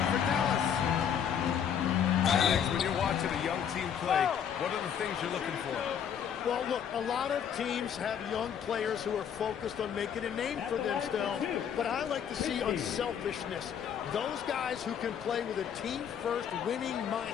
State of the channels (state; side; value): quieter; right; 8.3 dB